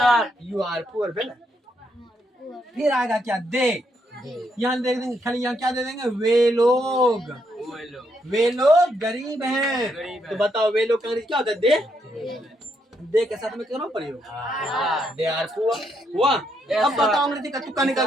You are poor, फिर आएगा क्या, दे, यहाँ दे देंगे खाली, यहाँ क्या दे देंगे, वे लोग, वे लोग गरीब हैं, गरीब हैं। तो बताओ वे लोग का अंग्रेजी क्या होता है, दे के साथ में करो प्रयोग, दे आर पुअर हुआ। अब बताओ अंग्रेजी का तुक्का निकल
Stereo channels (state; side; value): normal; both; correlation 0.77